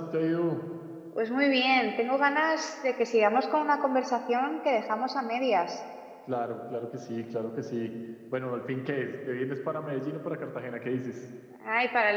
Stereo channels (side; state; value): both; identical; correlation 1.00